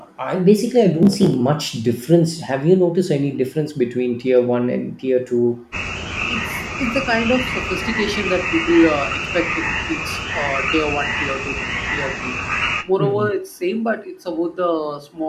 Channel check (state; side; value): identical; both; correlation 1.00